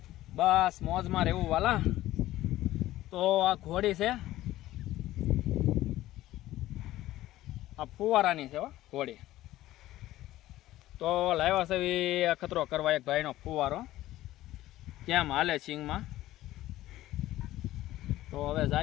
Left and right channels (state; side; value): quieter; right; 15.3 dB